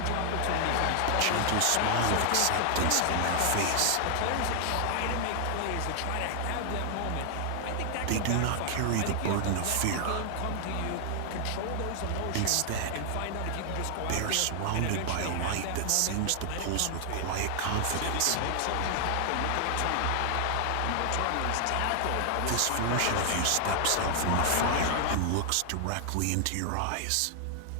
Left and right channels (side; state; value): both; different; correlation 0.00